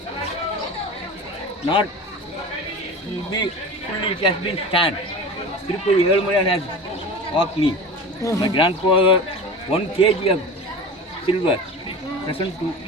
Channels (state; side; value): normal; both; correlation 0.32